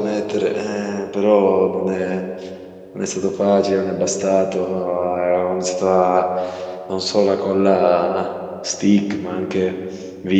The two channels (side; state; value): both; identical; correlation 1.00